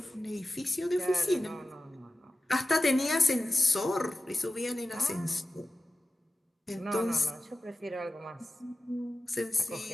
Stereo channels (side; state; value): both; normal; correlation 0.95